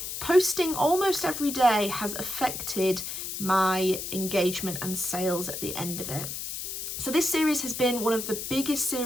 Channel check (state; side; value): noise; left; hiss, 6 dB below the sound